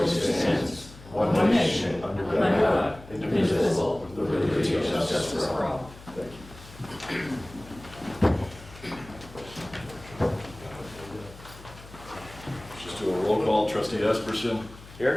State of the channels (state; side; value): noise; left; hum, 18 dB below the sound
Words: it stands, one nation, under God, indivisible, with liberty and justice for all. Thank you. Just do a roll call. Trustee Esperson.